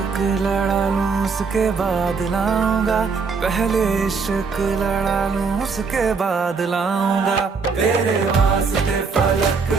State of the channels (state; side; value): quieter; left; 5.0 dB